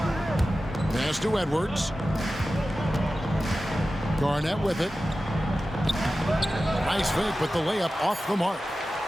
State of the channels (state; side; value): normal; both; correlation 0.94